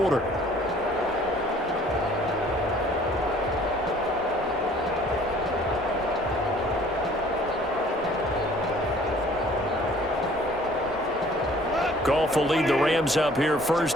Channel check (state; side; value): normal; both; correlation 0.55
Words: Goff will lead the Rams up here